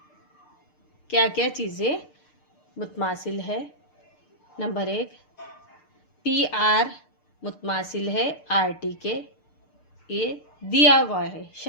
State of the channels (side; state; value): right; late; 6.7 ms